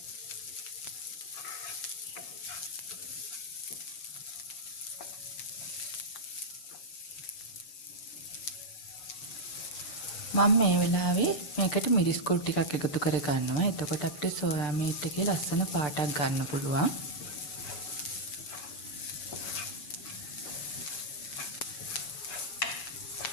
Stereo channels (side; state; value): right; late; 6.8 ms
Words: මම මේ වෙලාවේ මේකට මිරිස් කුඩු ටිකක් එකතු කර ගන්නවා. එතකොට අපිට සෝයා මීට් එකේ ලස්සන පාටක් ගන්න පුළුවන්.